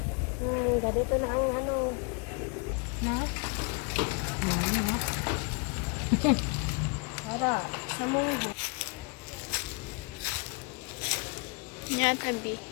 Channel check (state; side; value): quieter; right; 33.0 dB